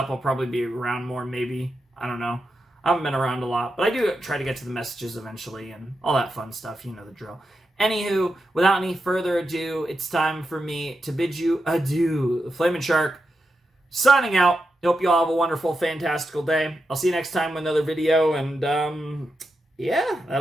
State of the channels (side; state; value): both; normal; correlation 0.87